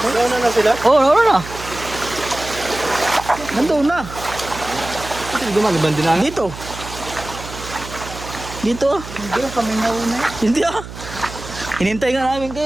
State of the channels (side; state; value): right; noise; hum, 12 dB below the sound